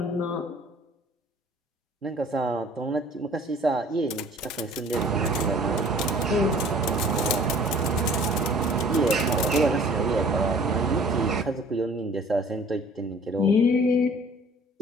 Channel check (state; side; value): normal; both; correlation 0.51